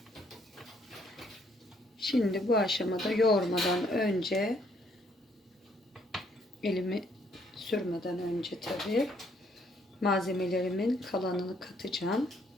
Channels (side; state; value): both; normal; correlation 0.67